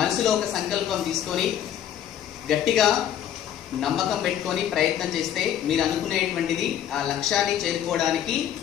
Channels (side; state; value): right; quieter; 10.3 dB